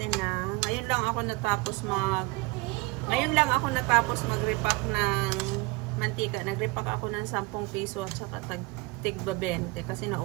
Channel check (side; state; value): left; quieter; 24.4 dB